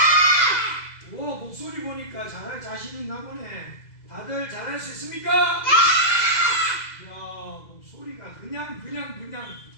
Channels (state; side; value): late; right; 2.0 ms